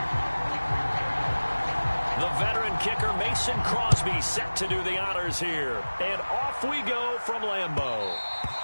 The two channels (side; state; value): both; inverted; correlation -1.00